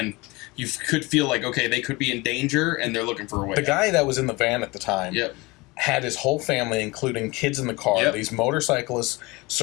you could feel like, okay, they could be in danger, and they're looking for a way. The guy that was in the van at the time Yep. had his whole family, including kids in the car. These motorcyclists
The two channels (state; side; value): quieter; right; 23.5 dB